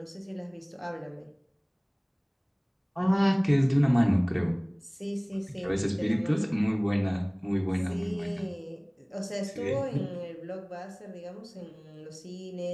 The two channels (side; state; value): both; identical; correlation 1.00